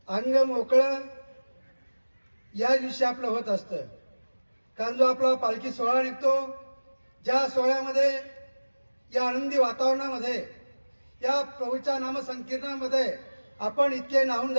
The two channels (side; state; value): both; inverted; correlation -1.00